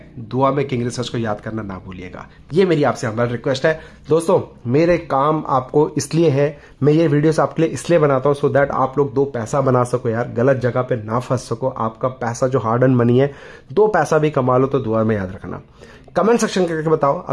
दुआ में किंग रिसर्च को याद करना ना भूलिएगा। ये मेरी आपसे हमारा रिक्वेस्ट है दोस्तों। मेरे काम आपको इसलिए है, मैं ये वीडियोस आपके लिए इसलिए बनाता हूं सो दैट आप लोग 2 पैसा बना सको यार, गलत जगह पे ना फंस सको। आपका पैसा जो हार्ड अर्न मनी है, 2 पैसा भी कमा लो तो दुआ में याद रखना। कमेंट सेक्शन करके बताओ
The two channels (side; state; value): both; identical; correlation 1.00